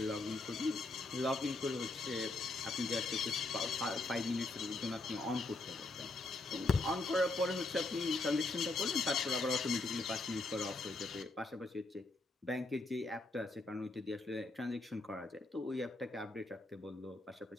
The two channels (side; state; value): right; quieter; 3.0 dB